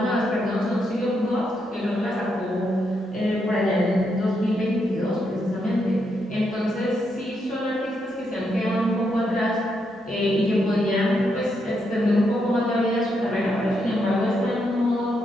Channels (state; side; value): normal; both; correlation 0.80